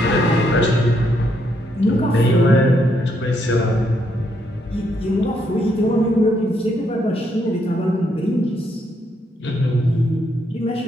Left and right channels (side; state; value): both; normal; correlation 0.75